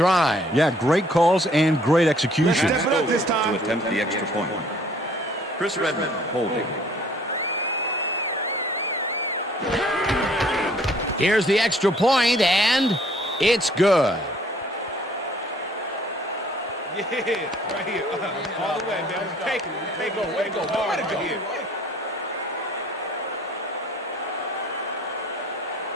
Yeah, great calls and great execution. To attempt the extra point. Chris Redmond holding. Here's the extra point, and it's good. Yeah, right here. All the way, man. Take it. Way to go hard right here.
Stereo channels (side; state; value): both; normal; correlation 0.57